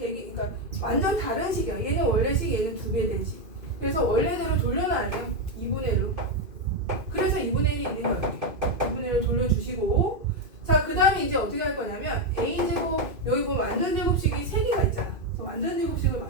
완전 다른 식이야. 얘는 원래 식, 얘는 2배 된 식. 그래서 원래대로 돌려놔야 돼요. 2분의 1로. 그래서 2분의 1이 있는 거예요. 2분의 1을 돌려주시고, 자, 그 다음에 이제 어떻게 할 거냐면 a제곱, 여기 보면 완전 제곱식이 3개가 있잖아. 그래서 완전 제곱식을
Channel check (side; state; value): left; late; 2.5 ms